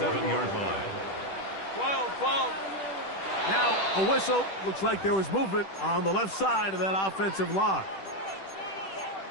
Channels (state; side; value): late; right; 10 ms